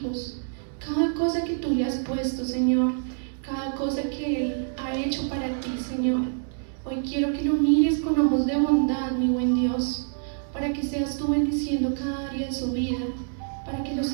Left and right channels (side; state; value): left; silent; digital silence